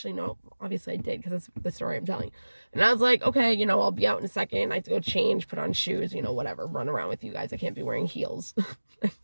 no. Obviously, I did because that's the story I'm telling. And I was like, okay, you know, I'll be out in a second. I have to go change, put on shoes, you know, whatever, run around with you guys. I can't be wearing heels.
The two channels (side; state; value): both; inverted; correlation -1.00